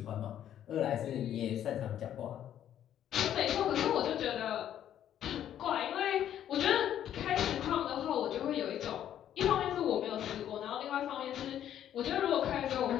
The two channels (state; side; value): quieter; right; 10.7 dB